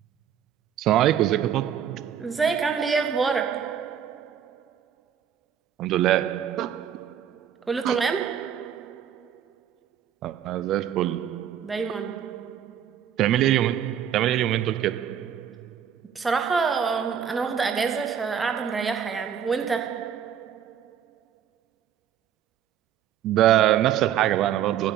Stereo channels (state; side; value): quieter; left; 9.2 dB